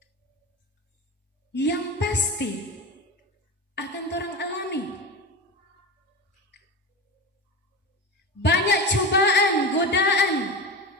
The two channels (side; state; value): both; normal; correlation 0.25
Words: yang pasti akan orang alami. Banyak cobaan, godaan